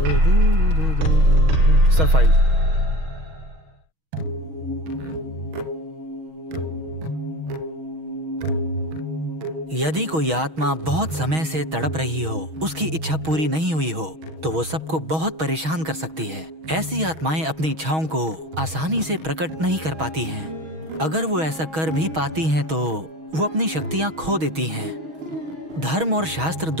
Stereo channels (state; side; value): late; left; 6.3 ms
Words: Sir file. यदि कोई आत्मा बहुत समय से तड़प रही हो, उसकी इच्छा पूरी नहीं हुई हो, तो वो सबको बहुत परेशान कर सकती है। ऐसी आत्माएं अपनी इच्छाओं को आसानी से प्रकट नहीं कर पाती हैं। अगर वो ऐसा कर भी पाती हैं तो वो अपनी शक्तियां खो देती हैं। धर्म और शास्त्र